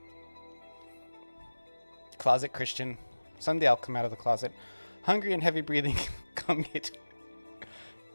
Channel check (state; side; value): inverted; both; correlation -1.00